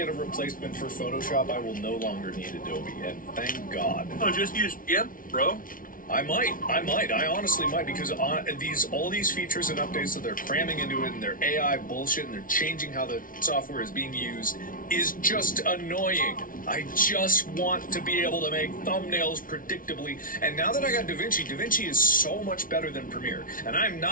a replacement for Photoshop, I will no longer need Adobe, and thank God. Oh, just use GIMP, bro. I might. I honestly might, because all these features and updates that they're cramming into it, and their AI bullshit, and they're changing how the software is being used, is just annoying. I just want to be able to make thumbnails predictably. And now that I got DaVinci is so much better than Premiere. And I'm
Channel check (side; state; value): right; late; 0.39 ms